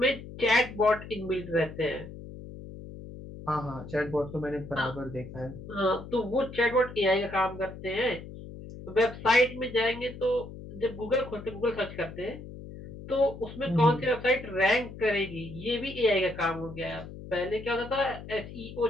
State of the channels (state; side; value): noise; left; hum, 13 dB below the sound